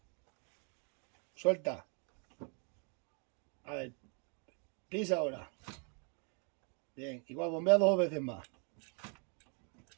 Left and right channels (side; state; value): left; quieter; 37.6 dB